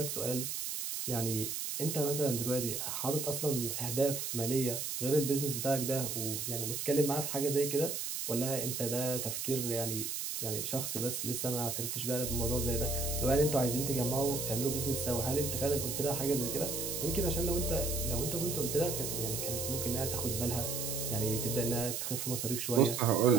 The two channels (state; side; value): noise; right; hiss, 3 dB below the sound